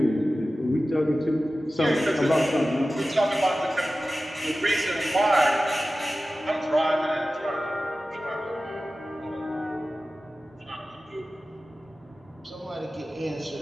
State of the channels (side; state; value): both; normal; correlation 0.95